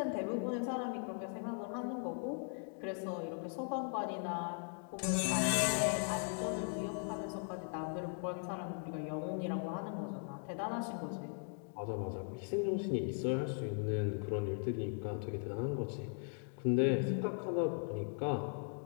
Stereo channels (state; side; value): silent; right; 52 dB below the other